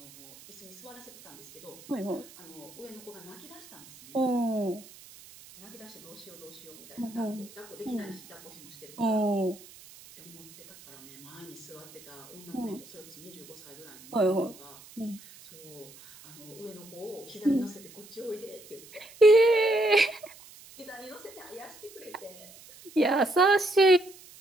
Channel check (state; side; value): noise; right; hiss, 20 dB below the sound